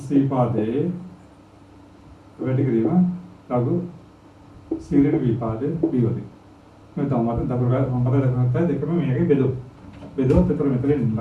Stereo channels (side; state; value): both; identical; correlation 1.00